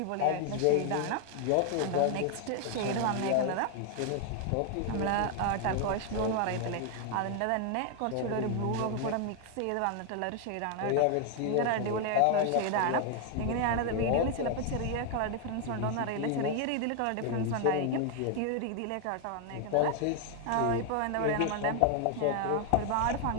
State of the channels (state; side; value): different; both; correlation 0.00